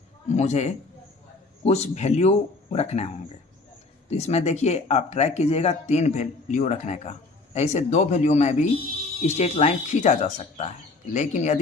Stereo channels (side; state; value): right; quieter; 3.5 dB